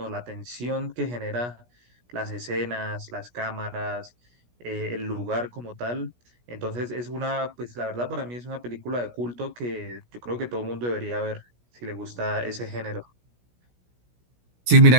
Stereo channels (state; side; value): late; left; 17 ms